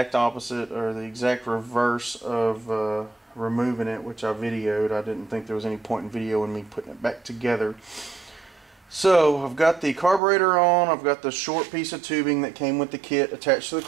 opposite, or the exact reverse of removing it, which I videoed. I didn't think there was any point in videoing me putting it back together. So I've got the carburetor on. I've got the short piece of tubing that came with the kit attached to the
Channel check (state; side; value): drops out; left; at 10.2 s